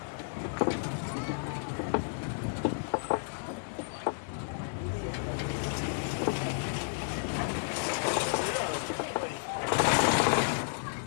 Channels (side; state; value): right; silent; digital silence